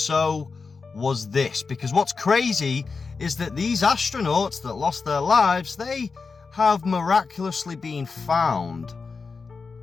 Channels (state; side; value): quieter; right; 4.7 dB